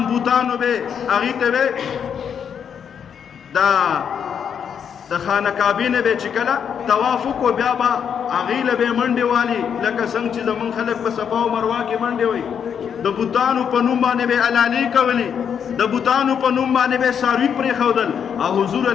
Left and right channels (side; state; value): right; quieter; 7.7 dB